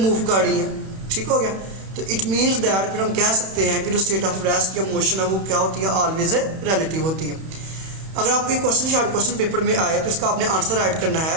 कर रही हैं, ठीक हो गया। तो इट मीन्स दैट फिर हम कह सकते हैं कि जो स्टेट ऑफ रेस्ट या मोशन है वो क्या होती है, ऑलवेज रिलेटिव होती है। अगर आपको एक क्वेश्चन शॉर्ट क्वेश्चन पेपर में आए तो इसका आपने आंसर राइट करना है।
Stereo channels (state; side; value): late; left; 31 ms